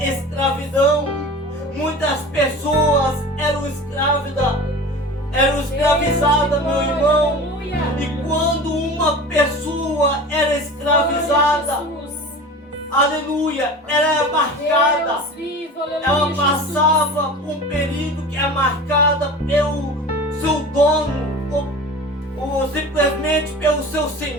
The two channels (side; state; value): both; normal; correlation 0.35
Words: Muitas pessoas eram escravizadas, meu irmão. E quando uma pessoa era escravizada, aleluia, ela era marcada, ela passava por um período que é marcada pelo seu dono, ou simplesmente pelo seu